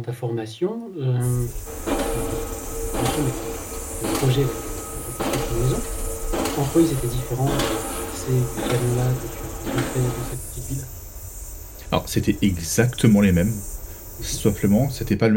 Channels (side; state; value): both; identical; correlation 1.00